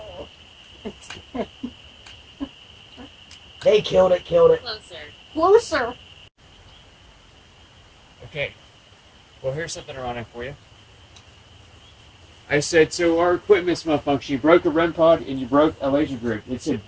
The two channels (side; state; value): both; identical; correlation 1.00